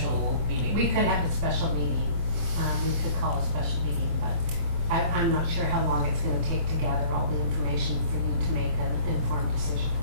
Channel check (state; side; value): late; left; 24 ms